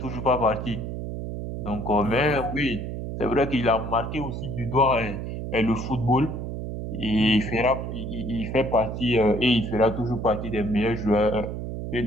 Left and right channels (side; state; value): right; noise; hum, 6 dB below the sound